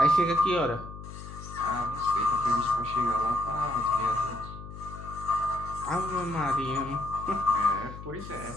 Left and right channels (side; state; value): left; noise; hum, 12 dB below the sound